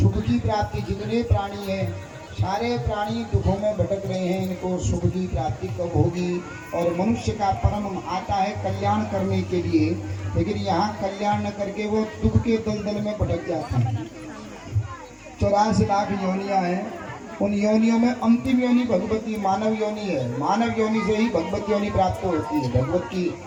की प्राप्ति, जितने प्राणी हैं सारे प्राणी दुखों में भटक रहे हैं, इनको सुख की प्राप्ति कब होगी। और मनुष्य का परम आता है कल्याण करने के लिए, लेकिन यहाँ कल्याण न करके वो दुख के दलदल में भटक जाते हैं। 84 लाख योनियां हैं, उन योनियों में अंतिम योनि भगवती मानव योनि है। मानव योनि से ही भगवत योनि प्राप्त होती है, भगवत की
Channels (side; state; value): both; identical; correlation 1.00